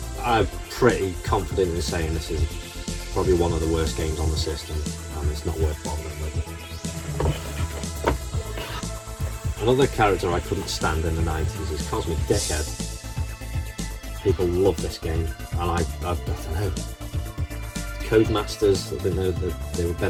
I'm pretty confident in saying this is probably one of the worst games on the system, and it's not worth bothering with. Another character I couldn't stand in the 90s is Cosmic Dickhead. People love this game, and I don't know. Codemasters. I think they were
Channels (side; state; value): both; identical; correlation 1.00